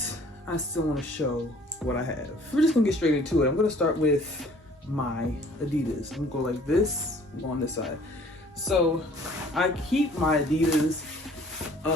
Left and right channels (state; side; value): normal; both; correlation 0.54